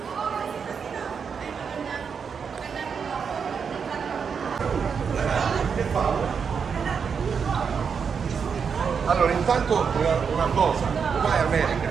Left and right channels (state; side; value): quieter; left; 6.3 dB